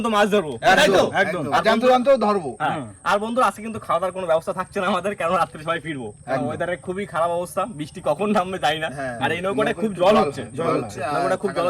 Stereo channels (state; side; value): identical; both; correlation 1.00